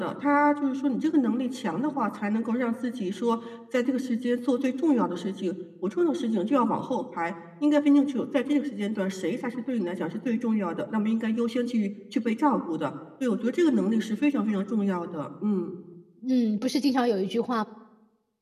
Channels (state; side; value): identical; both; correlation 1.00